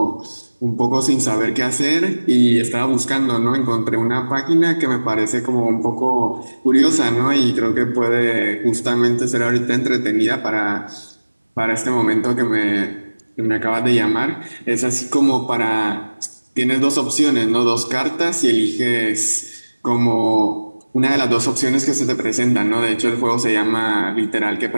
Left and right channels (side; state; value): both; inverted; correlation -1.00